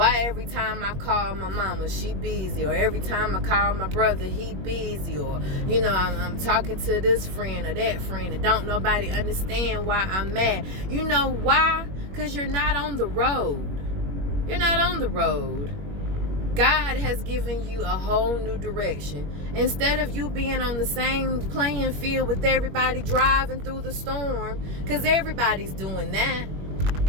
every time I call my mama, she busy, or every time I call my brother, he busy, or I'm talking to this friend or that friend, and don't nobody understand why I'm mad. You know why? Because you're not on the road. You're not on the road. God has given you a whole new direction. Instead of you being on the same playing field with everybody driving through the storm, because everybody's doing that.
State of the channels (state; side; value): late; left; 21 ms